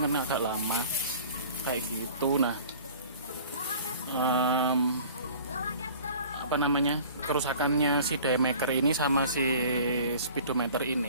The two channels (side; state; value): both; inverted; correlation -0.47